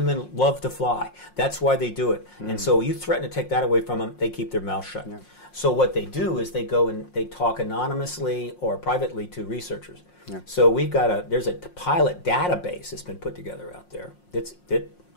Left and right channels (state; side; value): late; right; 5.6 ms